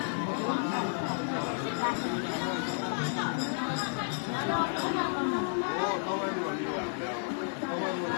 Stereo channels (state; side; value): silent; right; 57 dB below the other